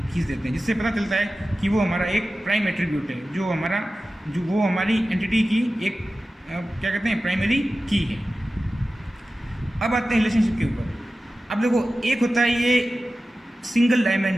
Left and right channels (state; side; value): normal; both; correlation 0.95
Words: देते हैं, जिससे पता चलता है कि वो हमारा एक प्राइम एट्रीब्यूट है, जो वो हमारी एंटिटी की एक क्या कहते हैं? प्राइमरी की है। अब आते हैं रिलेशनशिप के ऊपर। अब देखो, एक होता है ये सिंगल